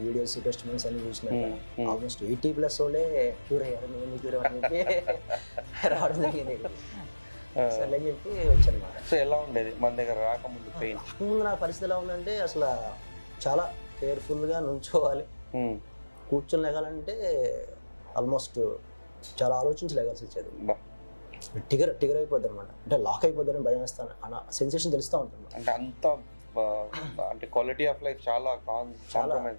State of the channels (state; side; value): inverted; both; correlation -1.00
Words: టెస్టిమోనియల్స్ అన్ని చూసినాక ఆల్మోస్ట్ 80+ వాళ్ళే క్యూర్ అయ్యారు. నేను క్యూర్ అనేది రావడం జరిగింది. సరే అని చెప్పి వచ్చానమాట. సో ఎలా ఉండేది మన దగ్గర రాకముందు పెయిన్? ముందు నా పరిస్థితి ఎలా ఉందంటే అసలు చాలా కేర్ఫుల్గా నుంచోవాలి, కూర్చొని లేగాలంటే ఆల్మోస్ట్ చాలా ఆలోచించి లేగాల్సి వచ్చేది. టిగర్ అయిపోద్ది అనమాట, అంటే లాక్ అయిపోద్దని భయం వేస్తాను అన్న సెన్సేషన్ తెలుస్తూ ఉంటుంది. అంటే అంత అంటే క్వాలిటీ ఆఫ్ లైఫ్ చాలా